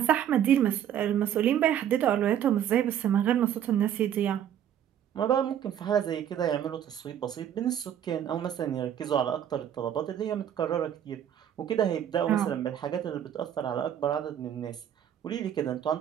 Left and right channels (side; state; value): left; quieter; 10.0 dB